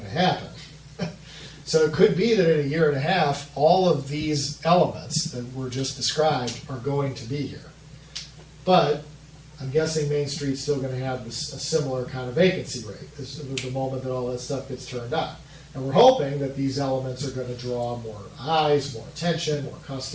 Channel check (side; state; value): both; identical; correlation 1.00